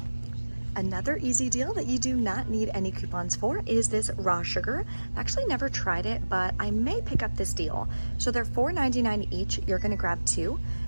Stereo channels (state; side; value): inverted; both; correlation -1.00